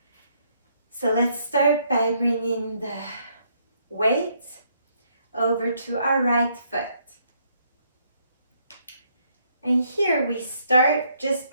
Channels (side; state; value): both; inverted; correlation -0.71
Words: So let's start by bringing the weight over to our right foot. And here we start just